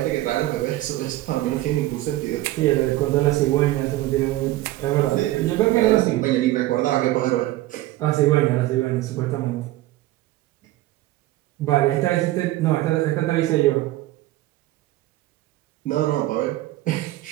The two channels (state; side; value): quieter; left; 16.4 dB